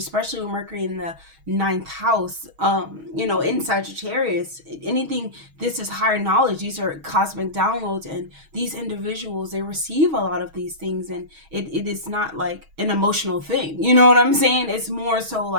with Mercury in the ninth house, in Sagittarius. Anything, this is higher knowledge. These are cosmic downloads, and these individuals, they receive a lot of these things, and it is not like an emotional thing. You know what I'm saying? It's more so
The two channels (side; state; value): left; late; 6.3 ms